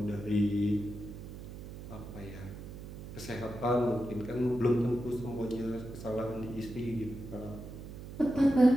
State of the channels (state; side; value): noise; right; hum, 11 dB below the sound